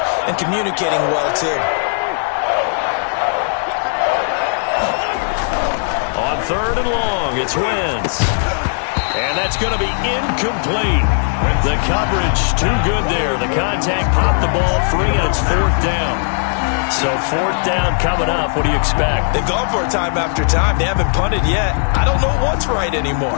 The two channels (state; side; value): silent; right; 62 dB below the other